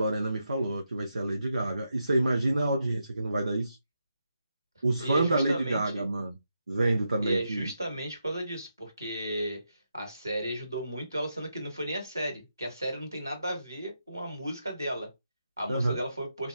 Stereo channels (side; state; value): both; inverted; correlation -0.84